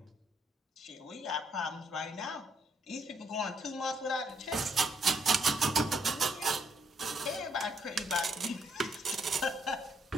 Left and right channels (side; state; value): both; normal; correlation 0.72